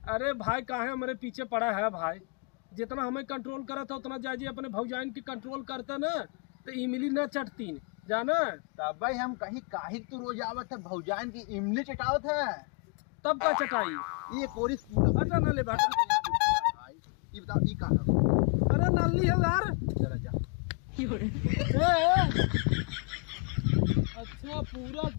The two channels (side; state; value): right; quieter; 36.2 dB